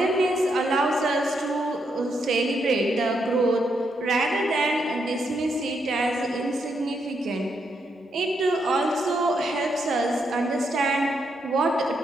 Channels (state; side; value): normal; both; correlation 0.79